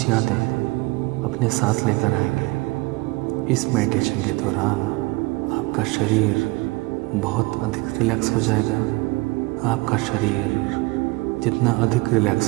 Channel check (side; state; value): left; quieter; 23.7 dB